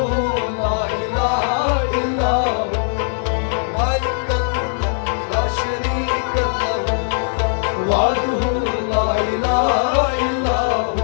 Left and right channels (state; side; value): silent; right; digital silence